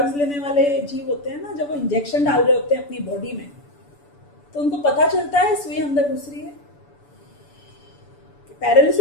लेने वाले जीव होते हैं ना, जब वो इंजेक्शन डाल रहे होते हैं अपनी बॉडी में तो उनको पता चलता है सुई अंदर घुस रही है।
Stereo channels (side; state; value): right; late; 6.9 ms